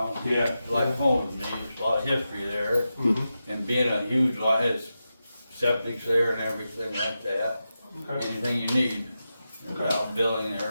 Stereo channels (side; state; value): both; inverted; correlation -0.90